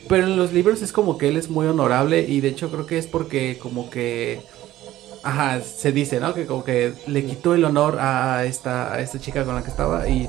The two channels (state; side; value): quieter; left; 14.6 dB